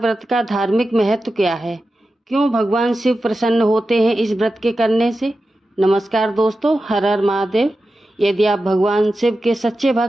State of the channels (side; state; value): both; normal; correlation 0.92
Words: का धार्मिक महत्व क्या है? क्यों भगवान शिव प्रसन्न होते हैं इस व्रत के करने से? नमस्कार दोस्तों, हर हर महादेव। यदि आप भगवान शिव के सच्चे